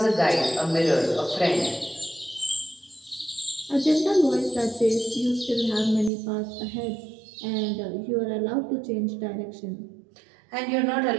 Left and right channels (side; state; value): left; drops out; at 6.1 s